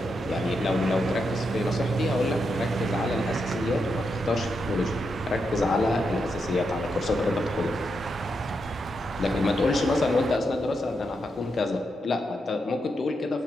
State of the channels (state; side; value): normal; both; correlation 0.83